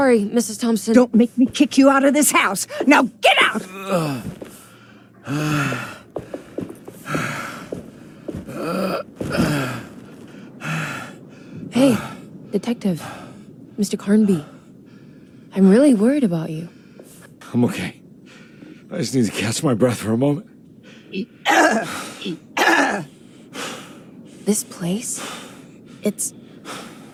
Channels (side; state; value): both; identical; correlation 1.00